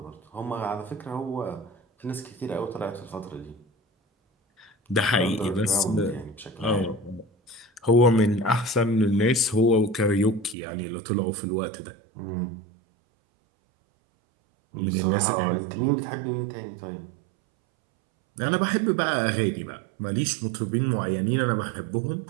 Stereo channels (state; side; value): drops out; left; at 10.6 s